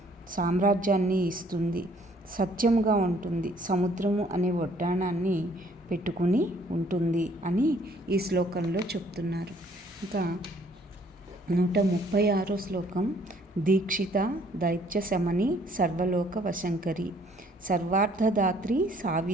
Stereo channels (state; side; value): normal; both; correlation 0.61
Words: సామ్రాజ్యాన్ని ఇస్తుంది, సత్యముగా ఉంటుంది, సముద్రము అనే వడ్డాణాన్ని పెట్టుకుని ఉంటుంది అని ఈ శ్లోకంలో చెప్తున్నారు. ఇంకా 136వ శ్లోకం. దీక్షిత దైత్య శమని సర్వలోక వశంకరి సర్వార్థదాత్రి